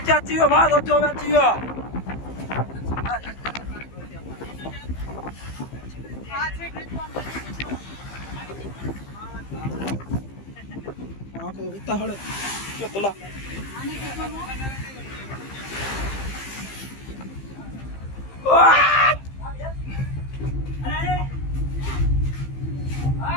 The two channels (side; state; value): right; late; 15 ms